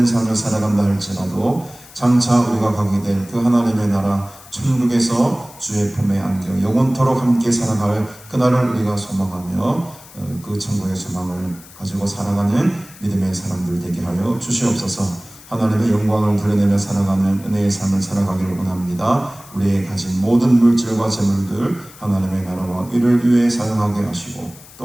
삶을 살아간다 할지라도 장차 우리가 가게 될 그 하나님의 나라 천국에서 주의 품에 안겨 영원토록 함께 살아갈 그날을 우리가 소망하며 그 천국의 소망을 가지고 살아가는 믿음의 사람들 되게 하여 주시옵소서. 하나님의 영광을 드러내며 살아가는 은혜의 삶을 살아가기를 원합니다. 우리의 가진 모든 물질과 재물들 하나님의 나라와 의를 위해 사용하게 하시고,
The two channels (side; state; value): left; noise; hiss, 21 dB below the sound